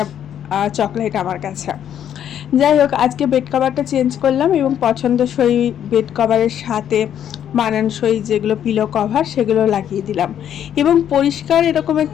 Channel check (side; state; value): right; quieter; 9.8 dB